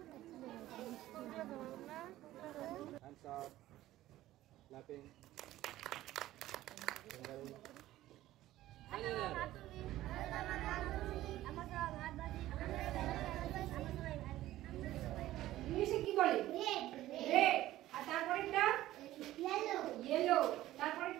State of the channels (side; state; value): left; quieter; 15.0 dB